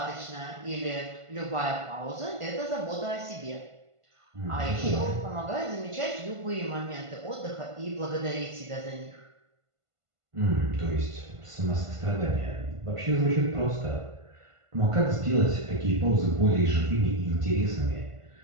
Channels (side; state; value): left; late; 1.5 ms